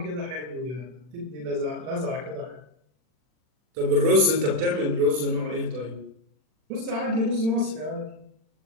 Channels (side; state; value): left; late; 40 ms